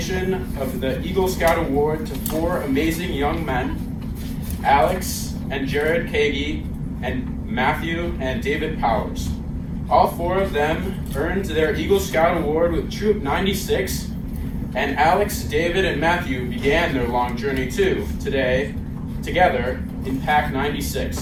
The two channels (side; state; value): both; identical; correlation 1.00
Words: of the Eagle Scout Award to four amazing young men, Alex and Jared Kagi, and Matthew and David Powers. All four of them earned their Eagle Scout Award with Troop 96, and Alex, David, and Matthew began their long journey too, together in Pack 96.